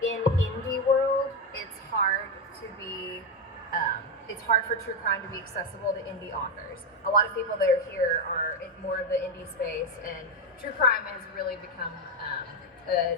in indie world, it's hard for true crime to be accessible to indie authors. A lot of people that are here are in more of the indie space, and true crime has really become a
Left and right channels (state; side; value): normal; both; correlation 0.09